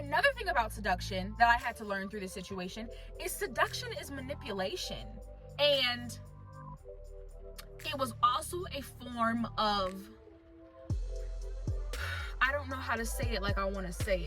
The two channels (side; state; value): both; identical; correlation 1.00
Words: thing about seduction that I had to learn through this situation is seduction is manipulation. And it was also a form of, I don't know how to say it like I want to say